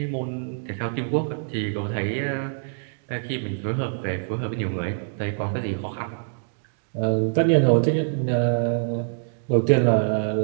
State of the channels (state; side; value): silent; left; digital silence